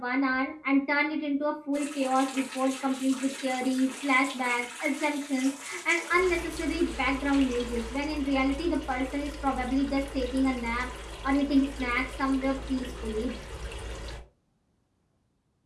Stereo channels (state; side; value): identical; both; correlation 1.00